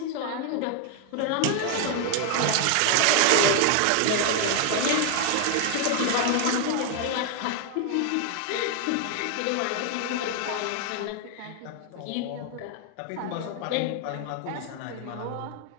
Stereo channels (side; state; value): both; different; correlation 0.01